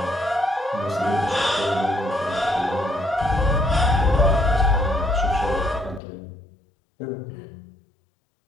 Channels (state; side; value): drops out; right; at 6.0 s